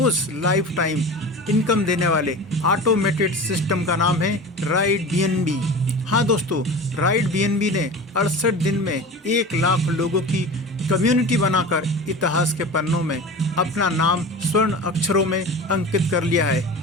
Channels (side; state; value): both; normal; correlation 0.34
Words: लाइफ टाइम इनकम देने वाले ऑटोमेटेड सिस्टम का नाम है राइड बीएनबी। हाँ दोस्तों, राइड बीएनबी ने 68 दिन में 1 लाख लोगों की कम्युनिटी बनाकर इतिहास के पन्नों में अपना नाम स्वर्ण अक्षरों में अंकित कर लिया है।